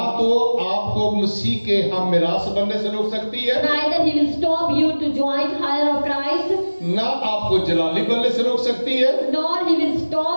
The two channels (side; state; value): both; inverted; correlation -1.00